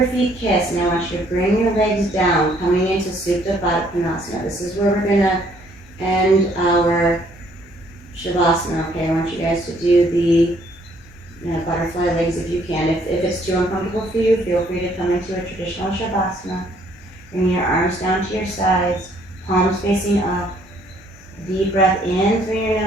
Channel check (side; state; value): both; normal; correlation 0.64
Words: feet kiss. Now I want you to bring your legs down, coming into Supta Baddha Konasana. This is where we're going to end our Shavasana. Okay, I want you guys to do the butterfly legs if you can. If it's too uncomfortable for you, feel free to come into a traditional Shavasana. Bring your arms down to your sides, palms facing up. Deep breath in through your